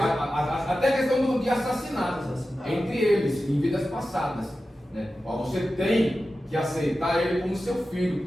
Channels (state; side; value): normal; both; correlation 0.93